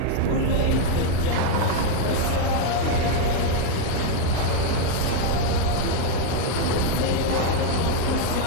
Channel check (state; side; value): different; both; correlation 0.01